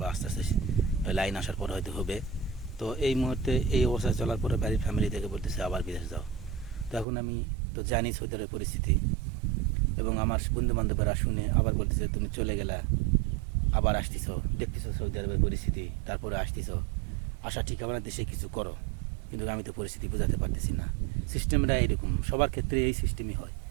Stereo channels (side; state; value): left; drops out; at 7.1 s